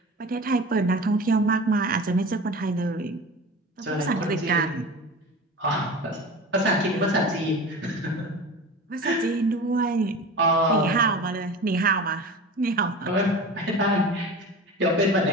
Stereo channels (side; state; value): both; normal; correlation 0.34